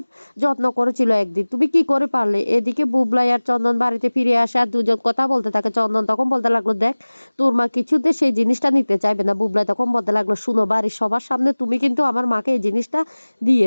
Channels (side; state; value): both; inverted; correlation -1.00